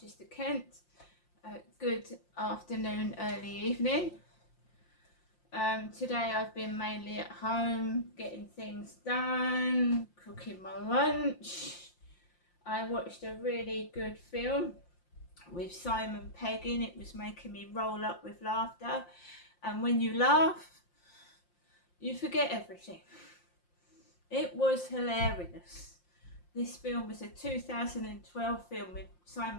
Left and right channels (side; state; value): right; late; 5.7 ms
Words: Kent. Good afternoon, early evening. Today I've been mainly at home, getting things done, cooking my lunch. I watched a really good film with Simon Pegg in. It was making me roll up with laughter. And when you laugh, you forget everything. It was hilarious. This film was a 2012 film with